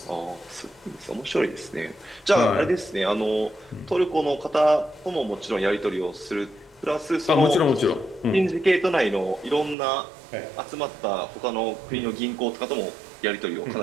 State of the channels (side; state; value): left; drops out; at 9.8 s